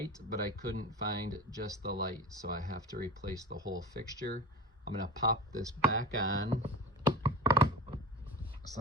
but I couldn't find just the light, so I have to replace the whole fixture. I'm gonna pop this back on so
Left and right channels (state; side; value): normal; both; correlation 0.29